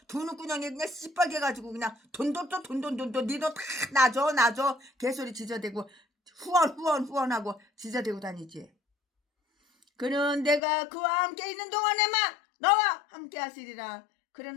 두는 꾸녕이 그냥 씨뻘게 가지고 그냥 돈 니도 다 나줘 개소리 지저대고 후원하고 지저대고 다니지. 그는 내가 그와 함께 있는 동안에만 너와 함께 하시리라.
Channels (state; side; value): drops out; right; at 10.6 s